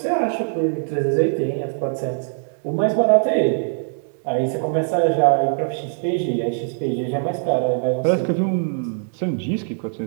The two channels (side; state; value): left; silent; digital silence